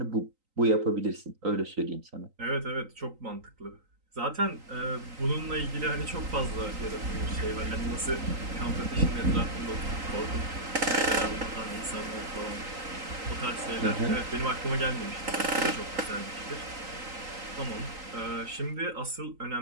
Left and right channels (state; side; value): late; left; 3.9 ms